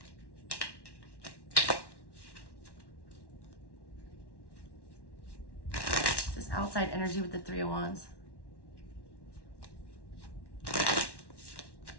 This outside energy with the 3 of Wands.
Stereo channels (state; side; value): late; right; 1.1 ms